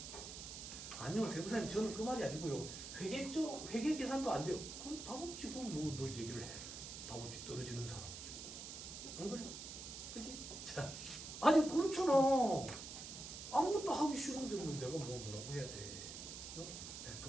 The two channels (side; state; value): right; noise; hiss, 9 dB below the sound